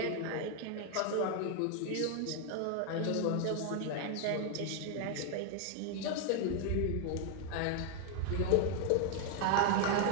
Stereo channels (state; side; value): different; both; correlation 0.00